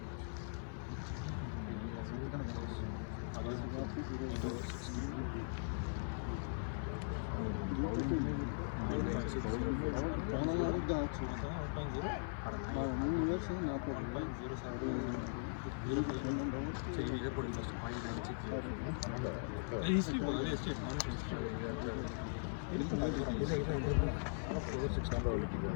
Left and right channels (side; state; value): right; silent; digital silence